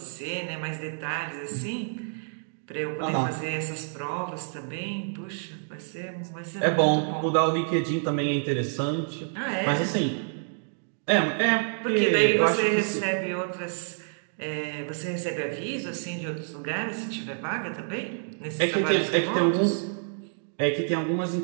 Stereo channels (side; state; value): left; silent; digital silence